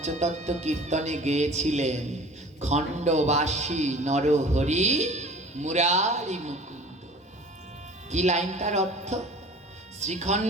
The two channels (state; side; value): normal; both; correlation 0.44